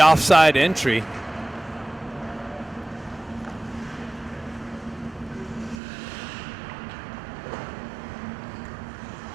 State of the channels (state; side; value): drops out; left; at 5.8 s